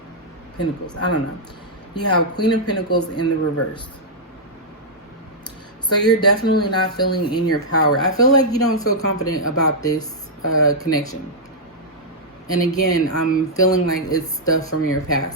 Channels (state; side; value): normal; both; correlation -0.07